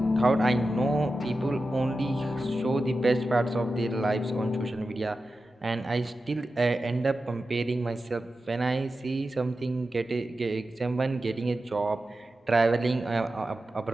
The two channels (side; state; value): both; normal; correlation 0.92